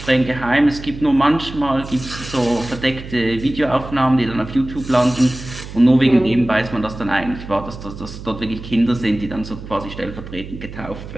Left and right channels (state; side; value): noise; right; hum, 12 dB below the sound